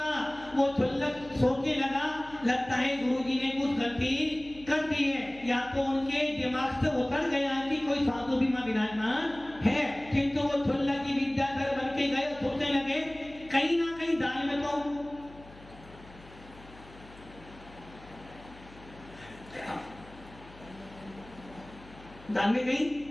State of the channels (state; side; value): noise; left; hum, 21 dB below the sound